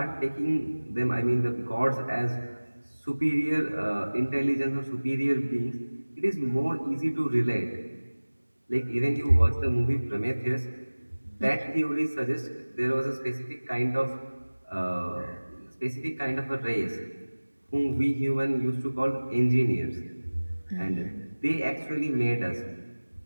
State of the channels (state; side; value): inverted; both; correlation -1.00